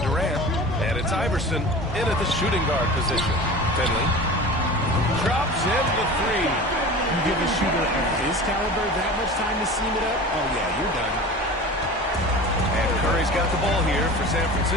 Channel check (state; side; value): normal; both; correlation 0.36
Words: and it's Iverson in at the shooting guard position. Finley drops in the 3. You give a shooter of his caliber that much time to seam it up, oh yeah, you're done. And Curry's got the ball here for San